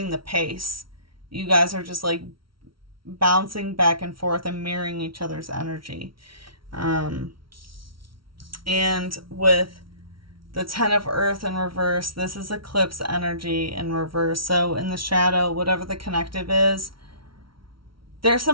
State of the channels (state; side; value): late; left; 0.74 ms